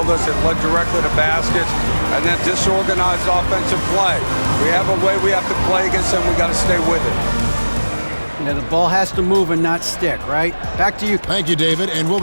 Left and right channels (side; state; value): both; inverted; correlation -1.00